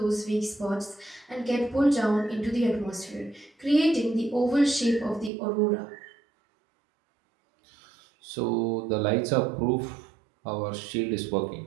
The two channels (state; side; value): drops out; left; at 5.3 s